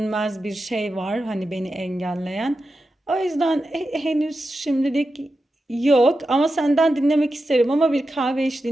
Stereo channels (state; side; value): normal; both; correlation 0.90